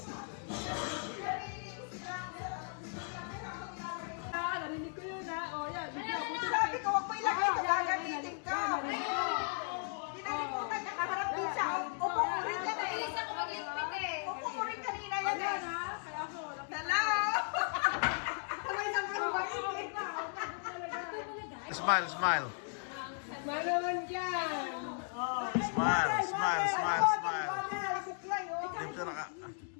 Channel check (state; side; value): silent; right; 54 dB below the other